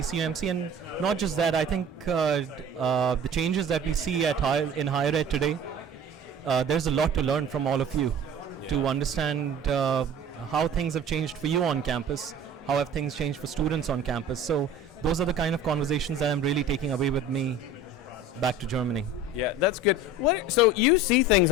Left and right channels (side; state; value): both; normal; correlation 0.41